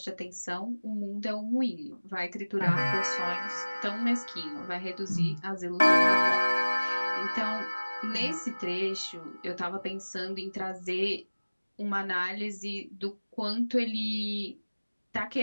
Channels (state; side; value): inverted; both; correlation -1.00